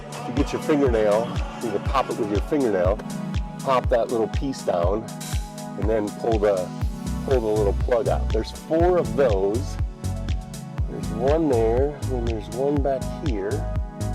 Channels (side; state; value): both; identical; correlation 1.00